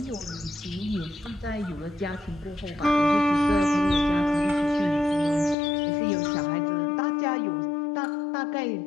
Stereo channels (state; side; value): drops out; right; at 5.6 s